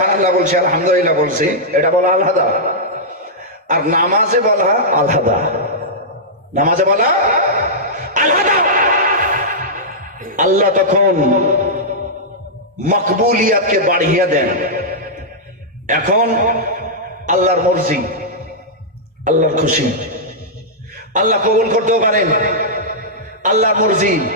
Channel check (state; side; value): normal; both; correlation -0.10